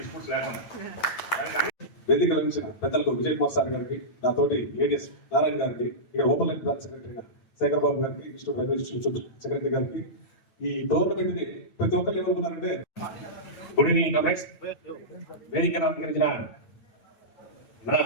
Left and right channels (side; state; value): right; late; 9.0 ms